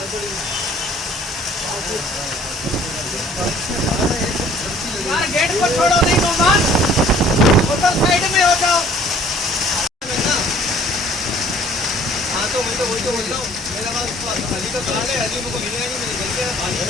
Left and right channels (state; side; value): normal; both; correlation 0.55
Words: गेट पर छोड़ो नहीं मेहमान, होटल साइड में हो जाओ। हाँ तो मैं तो वही तो बोल रहा हूँ, मेरा बात अली का कहा है, अली मुझको मिलेगा नहीं, मैंने गलती है पानी